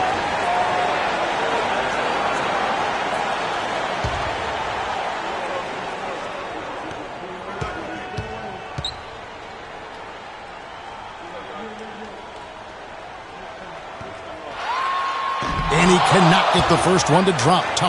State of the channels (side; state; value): both; identical; correlation 1.00